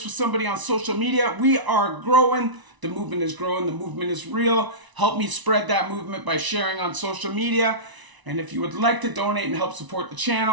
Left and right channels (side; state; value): left; late; 1.0 ms